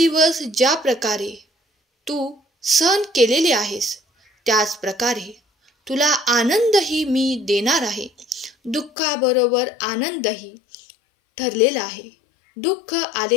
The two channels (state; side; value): drops out; right; at 8.9 s